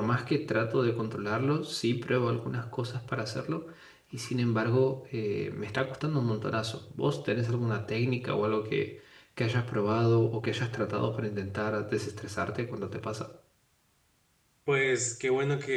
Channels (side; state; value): both; identical; correlation 1.00